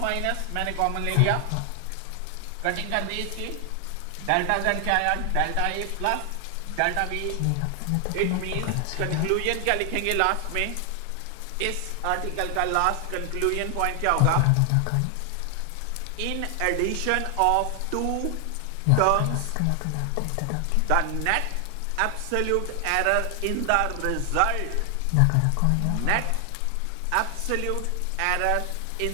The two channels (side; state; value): both; different; correlation 0.00